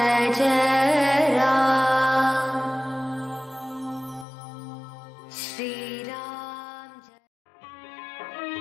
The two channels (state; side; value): drops out; right; at 4.2 s